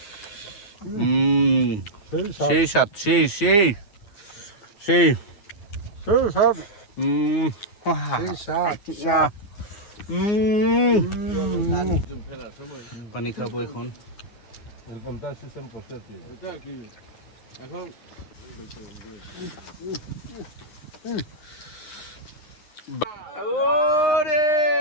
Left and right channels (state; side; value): late; right; 9.5 ms